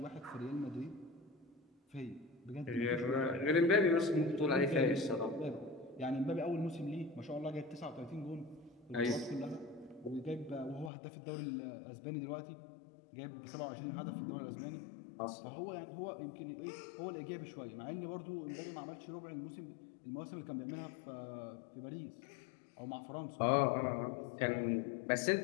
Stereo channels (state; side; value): drops out; right; at 10.9 s